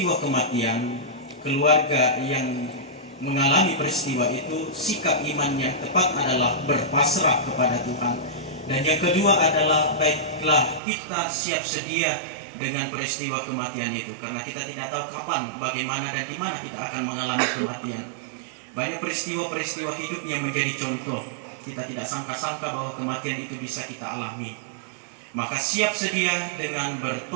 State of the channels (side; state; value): left; drops out; at 10.8 s